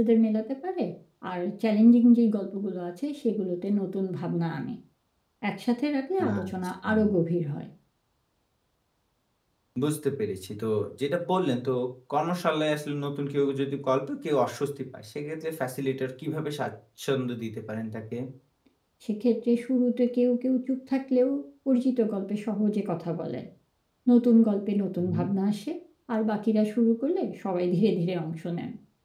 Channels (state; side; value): identical; both; correlation 1.00